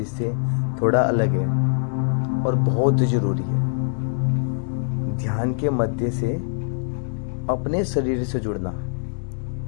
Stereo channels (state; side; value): silent; right; 63 dB below the other